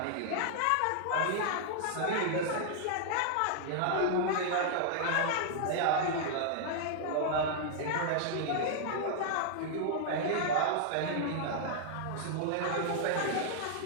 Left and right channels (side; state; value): both; different; correlation -0.01